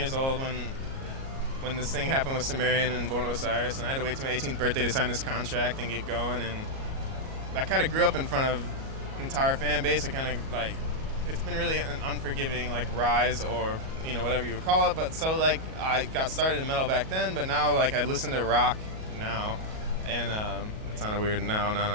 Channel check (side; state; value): left; late; 37 ms